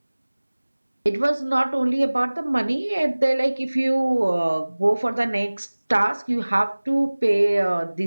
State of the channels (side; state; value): both; inverted; correlation -1.00